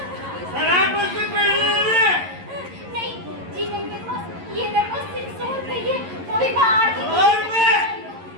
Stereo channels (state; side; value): late; left; 11 ms